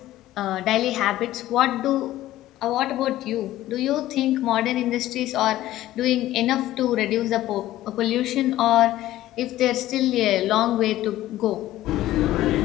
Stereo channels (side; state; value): right; quieter; 14.6 dB